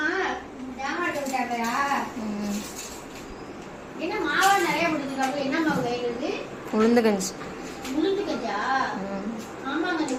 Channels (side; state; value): both; identical; correlation 1.00